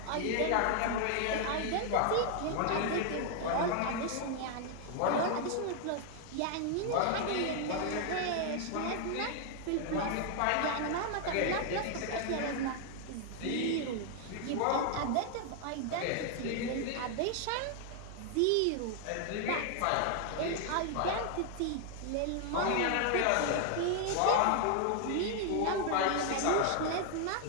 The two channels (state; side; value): different; both; correlation 0.00